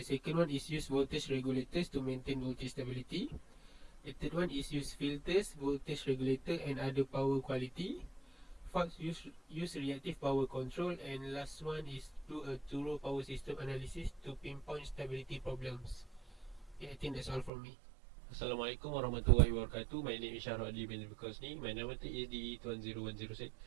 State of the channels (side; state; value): left; drops out; at 17.5 s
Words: second one is use voltage regulators to maintain voltage stability. The third one is use filters, voltage regulator and other power quality. Fourth, use reactive power control, and last one is do a thorough power system analysis to pinpoint stability problems. Yeah, I think that's all from me. Assalamualaikum warahmatullahi wabarakatuh. My name is Shahrul Adli bin Bukosni. My number is DE20106.